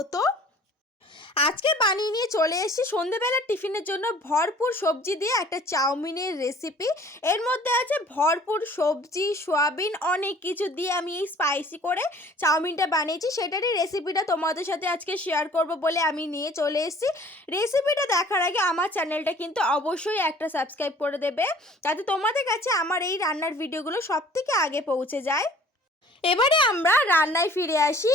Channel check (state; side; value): normal; both; correlation 0.51